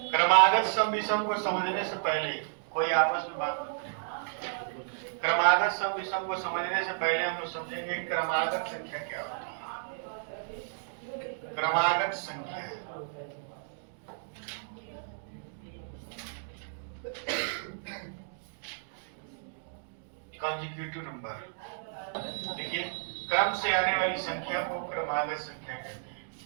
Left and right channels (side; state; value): left; silent; digital silence